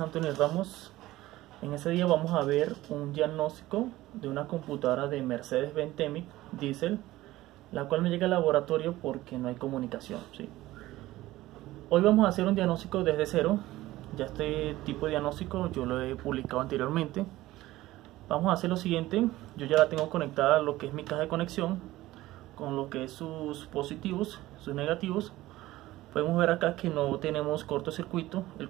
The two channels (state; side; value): quieter; left; 16.9 dB